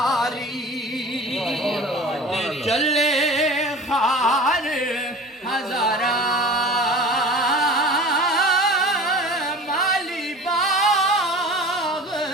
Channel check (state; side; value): normal; both; correlation 0.39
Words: चले खार हजारा माली बाग